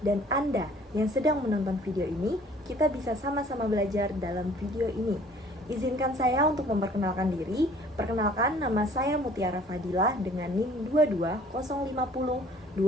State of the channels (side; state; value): both; normal; correlation 0.54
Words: dan Anda yang sedang menonton video ini, kita bisa sama-sama belajar dalam video ini. Izinkan saya untuk memperkenalkan diri. Perkenalkan, nama saya Mutiara Fadilah dengan NIM